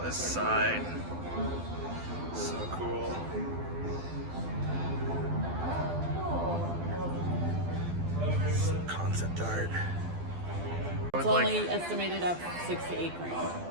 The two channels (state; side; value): late; left; 12 ms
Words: this sign. So cool. Some concept art. It's only estimated at 6 to 8 grand.